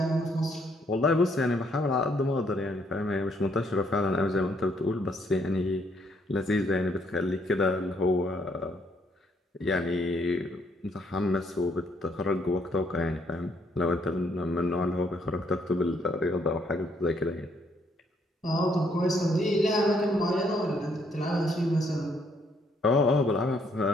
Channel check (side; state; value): both; normal; correlation 0.70